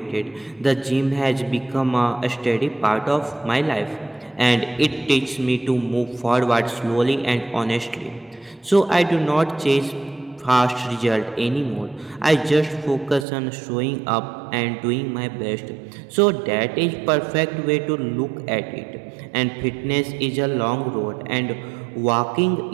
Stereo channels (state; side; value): drops out; left; at 13.2 s